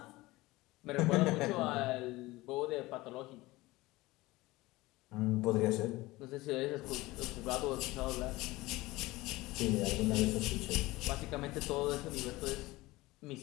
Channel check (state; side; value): quieter; right; 19.9 dB